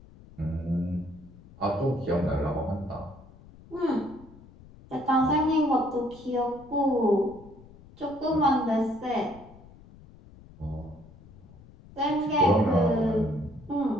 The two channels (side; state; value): left; noise; rumble, 22 dB below the sound